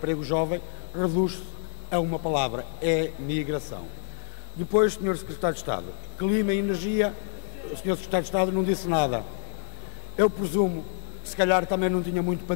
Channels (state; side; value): silent; right; 60 dB below the other